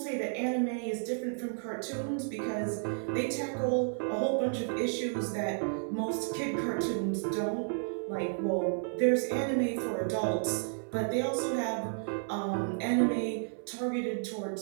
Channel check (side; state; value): left; silent; 56 dB below the other